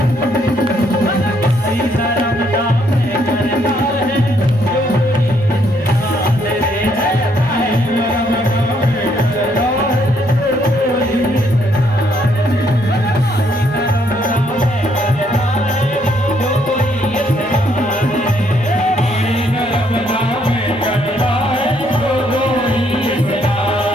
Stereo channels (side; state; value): both; normal; correlation 0.70